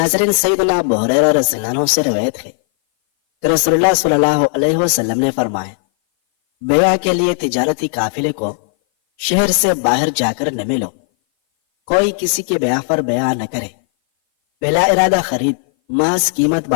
سیدنا ابو ہریرہ رضی اللہ عنہ سے روایت ہے کہ رسول اللہ صلی اللہ علیہ وسلم نے فرمایا، بیع کے لیے تجارتی قافلے کو شہر سے باہر جا کر نہ ملو۔ کوئی کسی کے بیع پر بیع نہ کرے۔ بلا ارادہ خرید محض قیمت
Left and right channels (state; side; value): silent; right; 58 dB below the other